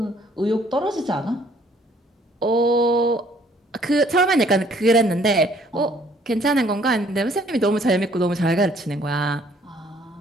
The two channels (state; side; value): normal; both; correlation 0.61